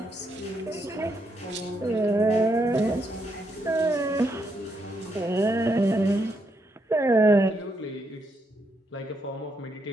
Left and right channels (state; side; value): normal; both; correlation 0.78